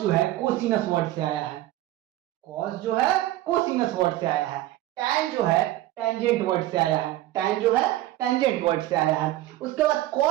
जो है कोसिनस वर्ड से आया है, कॉस जो है कोसिनस वर्ड से आया है। टैन जो है टेंजेंट वर्ड से आया है, टैन जो है टेंजेंट वर्ड से आया है। उसके बाद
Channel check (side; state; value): left; quieter; 15.4 dB